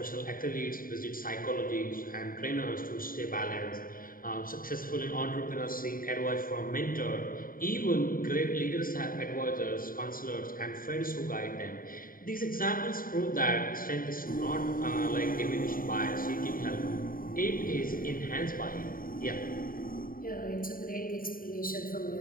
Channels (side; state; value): right; late; 0.41 ms